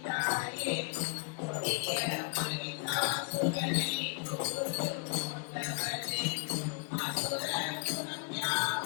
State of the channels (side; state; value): right; quieter; 38.6 dB